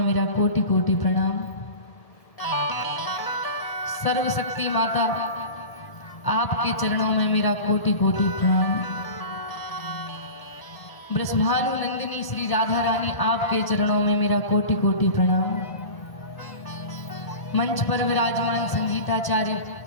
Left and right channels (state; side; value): late; right; 1.0 ms